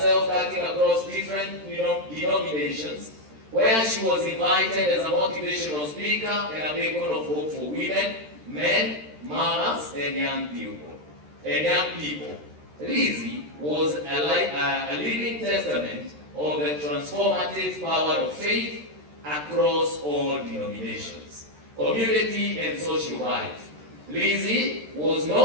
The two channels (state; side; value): late; left; 13 ms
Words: cutting across different denominations, where she was invited as a motivational speaker and a beacon of hope for women, men, mothers, and young people. Lizzie was a living testament of the transformative power of faith across all denominations, community, and social life. Lizzie was